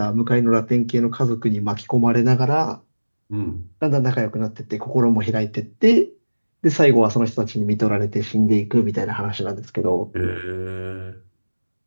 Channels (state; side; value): inverted; both; correlation -1.00